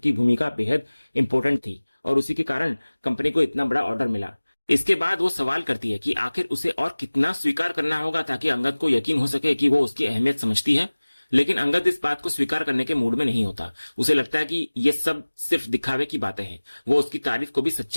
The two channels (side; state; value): both; inverted; correlation -1.00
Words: भूमिका बेहद इंपॉर्टेंट थी और उसी के कारण कंपनी को इतना बड़ा ऑर्डर मिला। इसके बाद वो सवाल करती है कि आखिर उसे और कितना स्वीकार करना होगा ताकि अंगद को यकीन हो सके कि वो उसकी अहमियत समझती है। लेकिन अंगद इस बात को स्वीकार करने के मूड में नहीं होता। उसे लगता है कि ये सब सिर्फ दिखावे की बातें हैं। वो उसकी तारीफ को भी